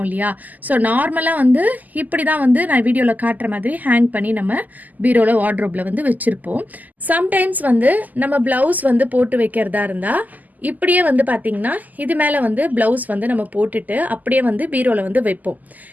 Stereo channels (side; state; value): left; late; 0.081 ms